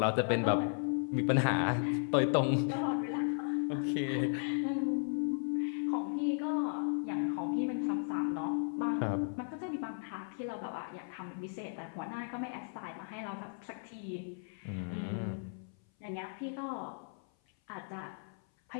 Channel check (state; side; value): silent; right; 54 dB below the other